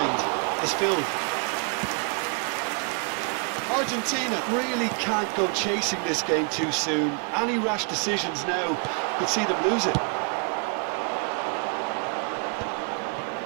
is filled. Argentina really can't go chasing this game too soon. Any rash decisions now could see them lose it.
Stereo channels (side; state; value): left; quieter; 35.1 dB